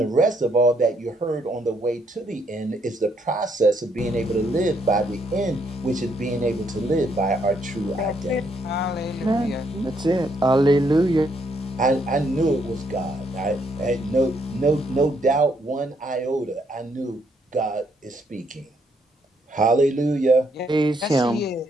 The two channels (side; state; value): both; normal; correlation 0.72